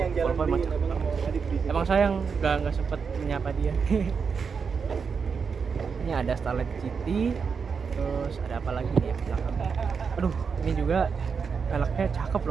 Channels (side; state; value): left; quieter; 5.8 dB